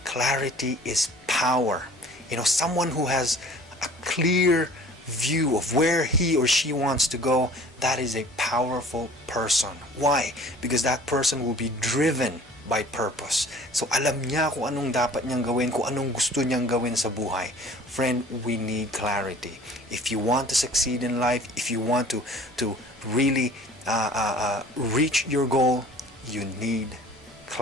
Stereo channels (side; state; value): both; normal; correlation 0.49